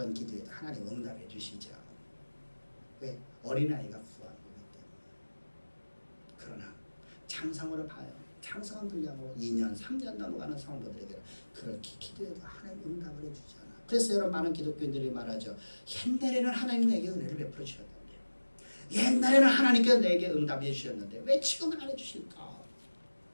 기도에도 하나님 응답해 주시죠. 왜? 어린아이가 구한 거기 때문에. 그러나 장성으로 봐요. 장성한 분량으로 2년, 3년 넘어가는 성도들에게 그렇게 기도해도 하나님 응답을 해주잖아. 그래서 여러분 많은 기독교인들이 말하죠. 옛날에는 하나님 내게 은혜를 베풀어 주셨는데, 옛날에는 하나님께서 내게 응답해 주셨는데 왜 지금은 안 해주실까?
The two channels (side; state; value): both; inverted; correlation -1.00